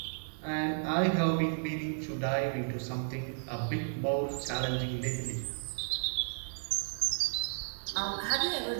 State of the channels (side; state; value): left; silent; digital silence